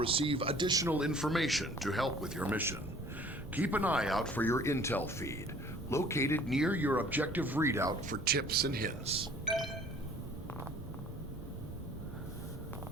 additional information to help with your mission. Keep an eye out for your intel feed, located near your objective readout for tips and hints.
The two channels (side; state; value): right; noise; rumble, 15 dB below the sound